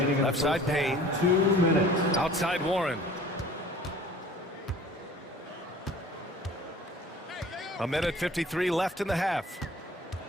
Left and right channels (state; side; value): normal; both; correlation 0.47